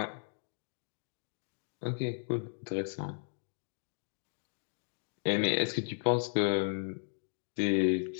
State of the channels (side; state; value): right; silent; digital silence